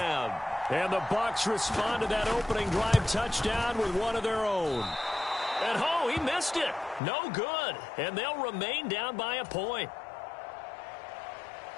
And the Bucs respond to that opening drive touchdown with one of their own. And oh, he missed it. No good. And they'll remain down by a point.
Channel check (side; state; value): right; drops out; at 7.0 s